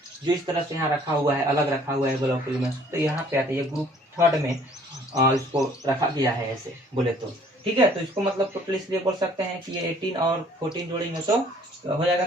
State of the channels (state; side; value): normal; both; correlation 0.57